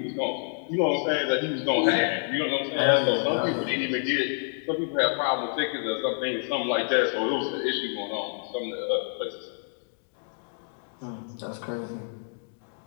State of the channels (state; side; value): silent; right; 57 dB below the other